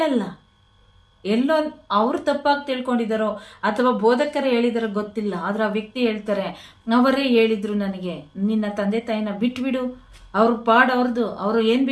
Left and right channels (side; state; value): both; identical; correlation 1.00